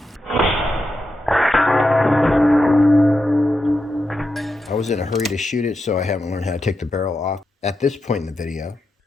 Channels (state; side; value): normal; both; correlation 0.87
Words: I was in a hurry to shoot it, so I haven't learned how to take the barrel off at this point in the video.